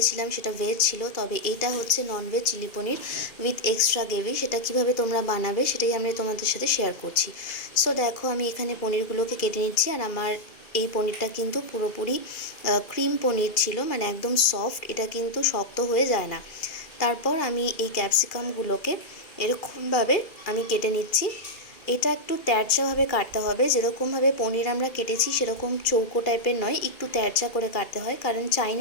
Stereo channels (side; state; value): right; late; 2.4 ms